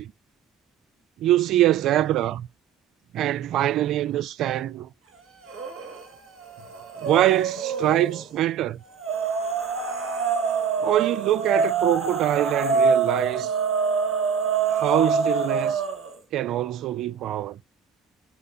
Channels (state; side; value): quieter; left; 8.4 dB